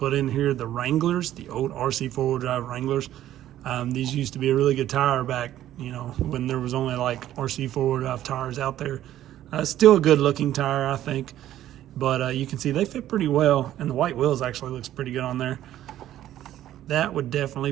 in here, the Wranglers, the old RC4 drive Wranglers. These used to be a really good tire back, you know, when there was only like RC4 drive tires out there. Still a good looking tire, I think. But you can see they fit pretty well, and the white wheels actually looks pretty good on there. That would definitely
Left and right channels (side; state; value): left; quieter; 12.7 dB